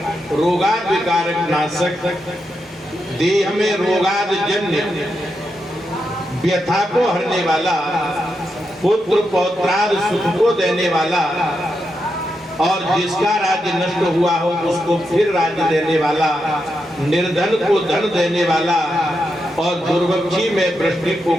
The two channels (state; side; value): normal; both; correlation 0.85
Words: रोगाद विकारक नाशक, देह में रोगाद जन्य व्यथा को हरने वाला, पुत्र पौत्राद सुख को देने वाला, और जिसका राज्य नष्ट हुआ हो उसको फिर राज्य देने वाला, निर्धन को धन देने वाला और दुर्भिक्षी में वृष्टि को